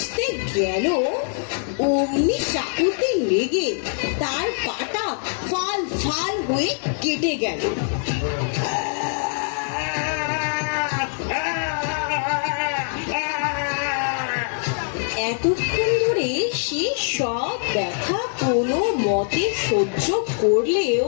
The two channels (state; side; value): silent; right; digital silence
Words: গেল, অমনি চাকুতে লেগে তার পাটা ফাল ফাল হয়ে কেটে গেল। এতক্ষণ ধরে সে সব ব্যথা কোনো মতে সহ্য করলেও